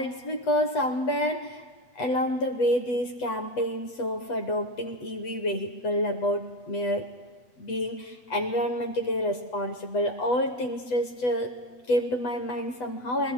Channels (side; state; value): right; late; 8.0 ms